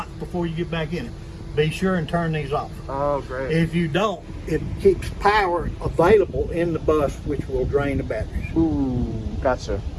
before you get back in it. Be sure and turn these off. Oh, great. If you don't, it keeps power available in the bus, which will drain the batteries. Ooh, gotcha.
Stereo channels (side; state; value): both; identical; correlation 1.00